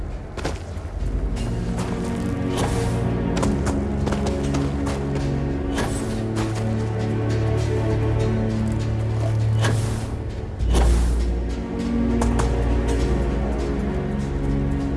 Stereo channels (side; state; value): both; identical; correlation 1.00